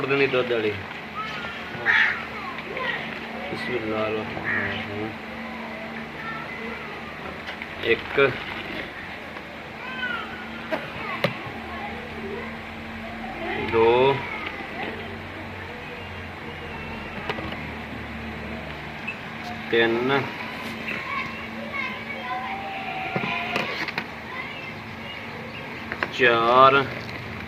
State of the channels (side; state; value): both; identical; correlation 1.00